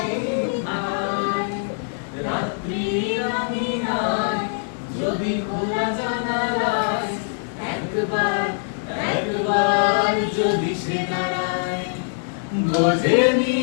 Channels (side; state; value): right; silent; digital silence